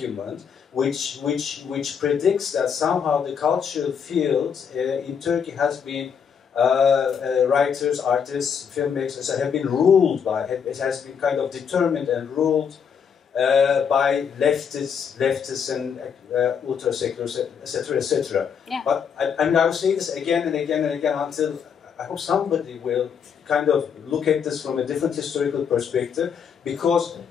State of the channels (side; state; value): right; quieter; 7.1 dB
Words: which predicts that somehow the cultural field in Turkey has been writers, artists, filmmakers have been ruled by, it has been kind of determined and ruled by leftists and ultra-seculars, etc., etc. Yeah. But I will say this again and again and again until I hope somebody will kind of look at this from a different historical perspective, because